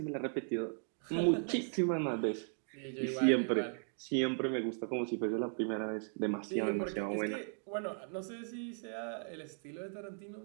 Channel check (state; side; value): silent; left; 53 dB below the other